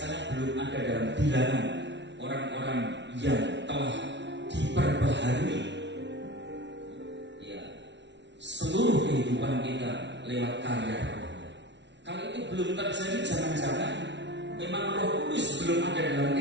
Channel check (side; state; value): left; late; 0.51 ms